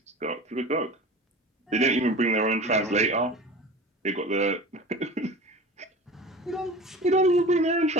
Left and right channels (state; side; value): normal; both; correlation 0.36